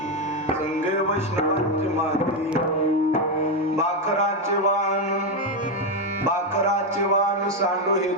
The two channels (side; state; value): both; normal; correlation 0.07